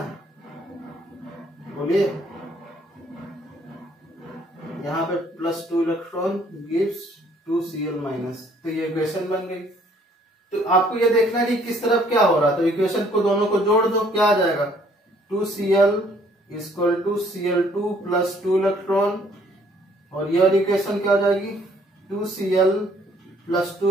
बोलिए, यहाँ पे plus 2 electron gives 2Cl minus. तो ये इक्वेशन बन गई। तो आपको ये देखना है कि किस तरफ क्या हो रहा है, तो इक्वेशन को दोनों को जोड़ दो, क्या आ जाएगा, 2Cl equal to Cl2 plus 2 electron, और ये वाली इक्वेशन क्या हो जाएगी, 2Cl plus 2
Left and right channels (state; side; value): normal; both; correlation 0.62